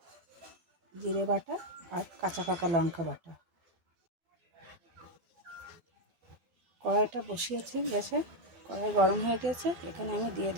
জিরে বাটা আর কাঁচা পাকা লঙ্কা বাটা। কড়াইটা বসিয়েছি গ্যাসে, কড়াই গরম হয়ে গেছে। এখানে আমি দিয়ে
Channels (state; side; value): late; left; 12 ms